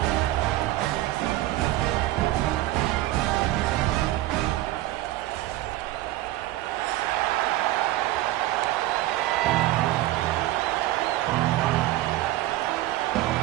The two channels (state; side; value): quieter; left; 16.0 dB